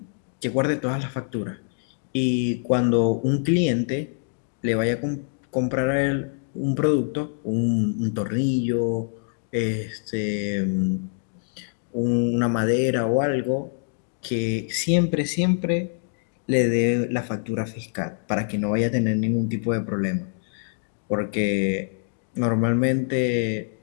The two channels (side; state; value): right; silent; digital silence